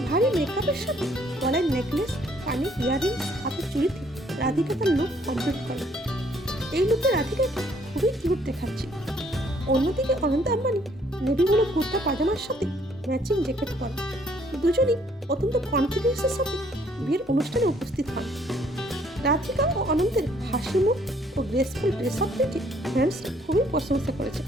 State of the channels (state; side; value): normal; both; correlation 0.64